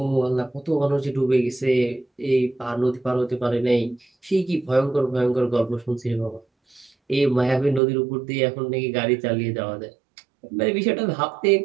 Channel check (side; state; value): left; drops out; at 7.8 s